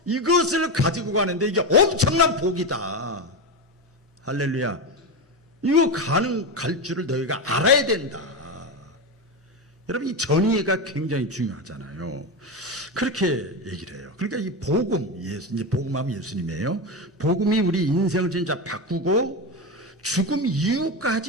이것을 가지고 가는데 이게 엄청난 복이다. 할렐루야. 이거 갈 줄을 너희가 알아야 된다. 여러분, 이 전이해가 굉장히 중요하잖아요. 그렇게 얘기를 해요. 그러니까 이 복음, 이제 복음하면 예수님이에요. 복음이 우리 인생을 진짜 바꾸고 죽음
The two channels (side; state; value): both; normal; correlation 0.15